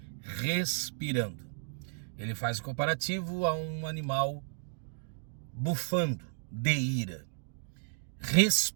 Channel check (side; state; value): left; silent; digital silence